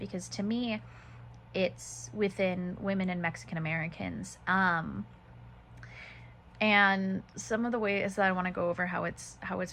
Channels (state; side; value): identical; both; correlation 1.00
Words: to me, it's within women and Mexican Americans. And some of the ways that I want to go over how it's